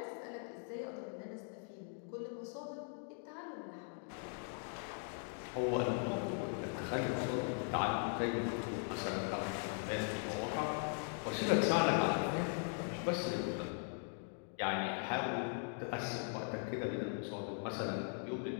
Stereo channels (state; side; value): silent; right; 51 dB below the other